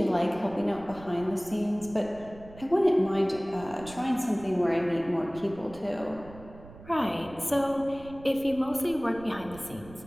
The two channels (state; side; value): noise; right; rumble, 18 dB below the sound